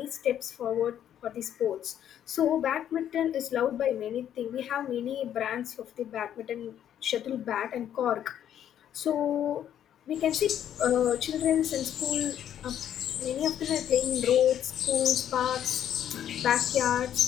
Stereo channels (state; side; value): quieter; right; 10.3 dB